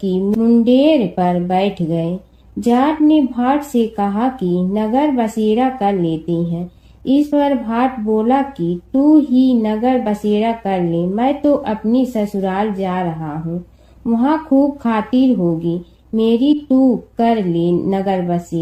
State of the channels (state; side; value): identical; both; correlation 1.00